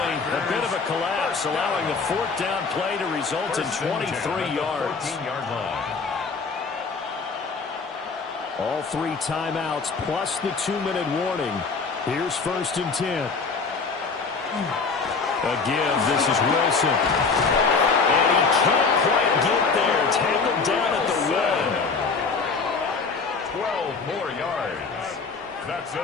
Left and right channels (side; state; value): right; quieter; 4.7 dB